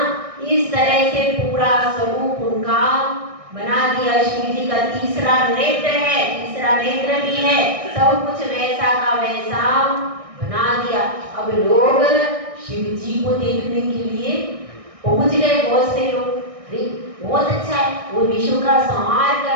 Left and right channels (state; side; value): late; left; 1.6 ms